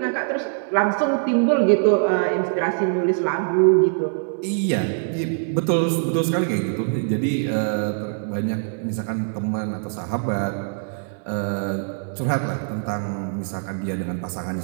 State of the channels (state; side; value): silent; left; 63 dB below the other